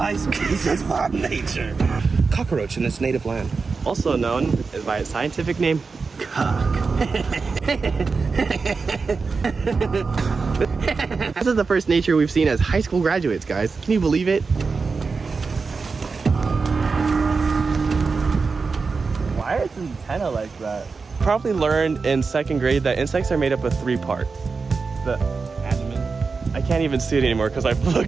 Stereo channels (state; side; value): quieter; left; 4.6 dB